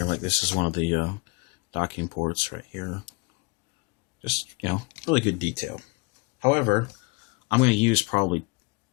Like this is one of the docking ports right here. Just, you know, really good detail. However, I'm going to use probably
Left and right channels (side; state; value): right; quieter; 27.6 dB